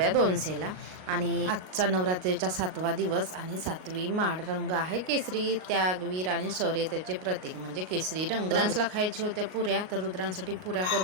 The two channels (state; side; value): late; left; 38 ms